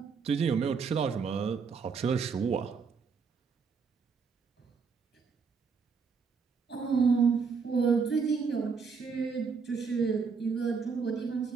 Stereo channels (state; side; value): quieter; left; 5.5 dB